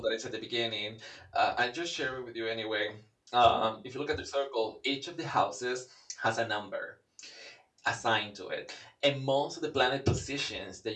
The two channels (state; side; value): identical; both; correlation 1.00